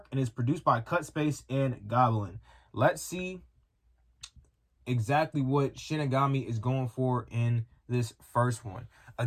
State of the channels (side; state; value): both; identical; correlation 1.00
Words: and is produced by Cut Space and Goblin. Let's see exactly what Shinigami is going for in this first one.